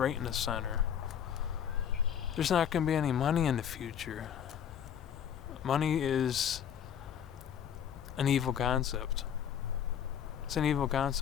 in the center. There's not going to be any money in the future. Money is an evil concept. It's an evil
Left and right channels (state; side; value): quieter; right; 8.9 dB